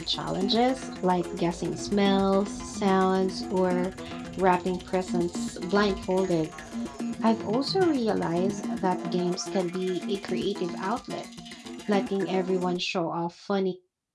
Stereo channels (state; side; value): identical; both; correlation 1.00